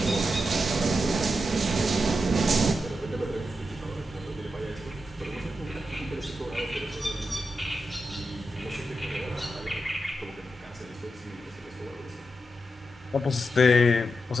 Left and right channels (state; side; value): normal; both; correlation 0.87